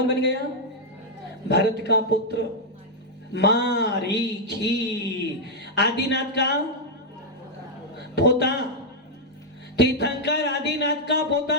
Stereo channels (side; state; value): both; normal; correlation -0.03